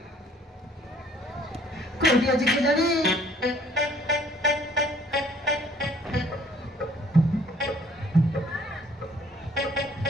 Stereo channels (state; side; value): normal; both; correlation 0.58